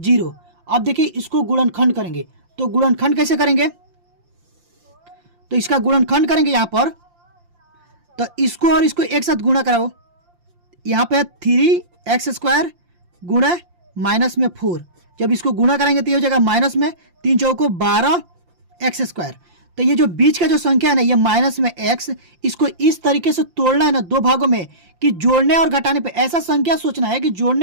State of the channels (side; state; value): left; late; 5.7 ms